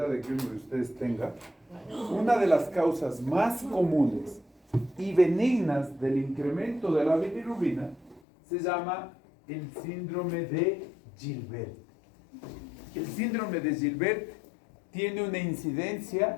de que uno de ustedes tenga, una de las causas más comunes y benignas del incremento de la bilirrubina se llama el síndrome de Gilbert. El síndrome de Gilbert tiene una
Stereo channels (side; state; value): right; drops out; at 8.2 s